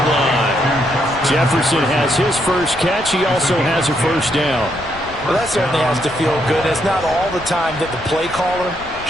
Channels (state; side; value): noise; left; rumble, 18 dB below the sound